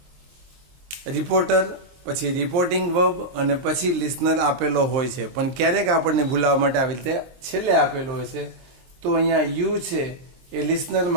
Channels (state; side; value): late; left; 23 ms